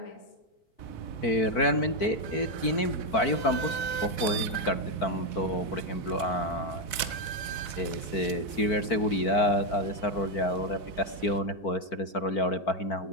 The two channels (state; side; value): late; right; 4.3 ms